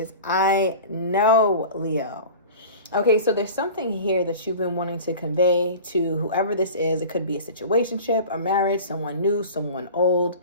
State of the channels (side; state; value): both; inverted; correlation -0.37